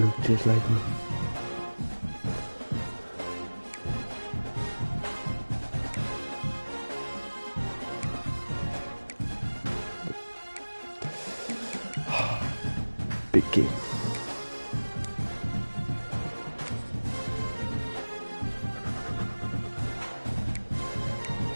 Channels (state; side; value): inverted; both; correlation -1.00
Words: just like me. Big game.